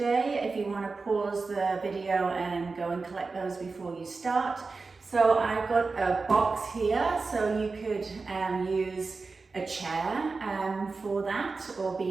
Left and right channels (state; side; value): quieter; left; 4.1 dB